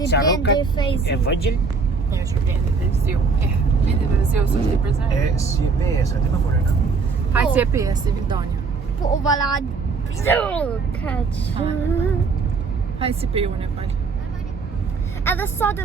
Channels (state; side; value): quieter; left; 4.7 dB